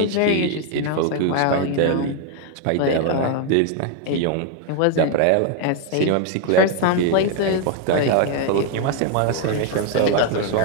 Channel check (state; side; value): different; both; correlation 0.00